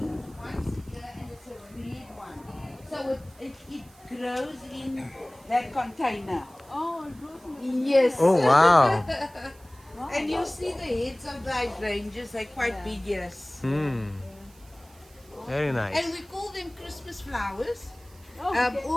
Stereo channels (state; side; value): noise; right; hiss, 27 dB below the sound